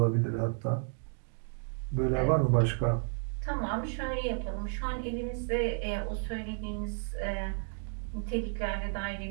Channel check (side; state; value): left; silent; 56 dB below the other